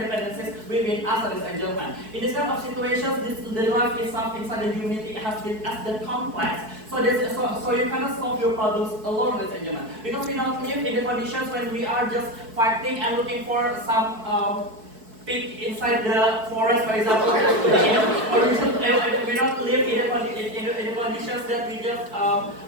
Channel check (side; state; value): left; late; 4.6 ms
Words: within us as a German. In this kind of situations, the life itself inside the humanity has been as the complex. So you cannot solve your problems alone as a German. Because we don't live in the conditions when we are just fighting and looking for some pig inside the forest, for example. Or we don't live in the conditions that we just